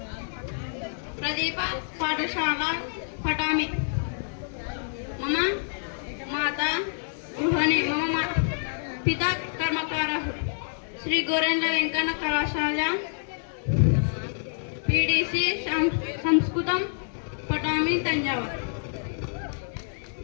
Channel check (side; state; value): right; silent; digital silence